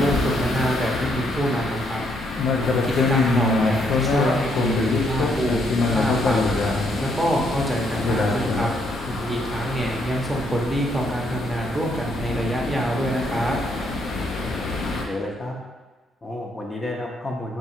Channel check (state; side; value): normal; both; correlation 0.73